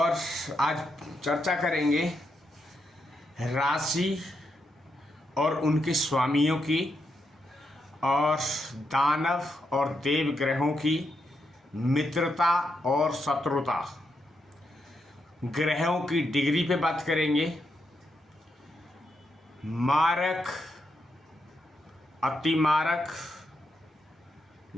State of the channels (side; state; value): both; normal; correlation 0.82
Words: आज चर्चा करेंगे राशि और उनके स्वामियों की और दानव और देव ग्रहों की मित्रता और शत्रुता, ग्रहों की डिग्री पे बात करेंगे, मारक अतिमारक